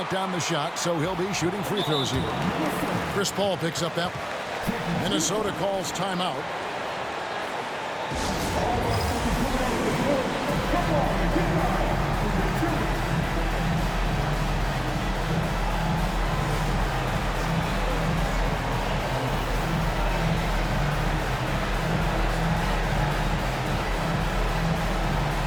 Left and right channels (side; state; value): both; identical; correlation 1.00